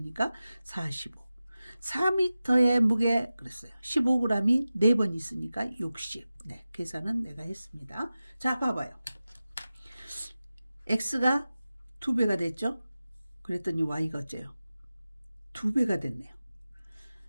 45. 4m의 무게, 그랬어요. 15g이 4번 있으니까 60. 네, 계산은 내가 했습니다. 자, 봐봐요. x가 2배가 됐죠? 그랬더니 y가 어째요? 2배가 됐네요.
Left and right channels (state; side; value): inverted; both; correlation -0.95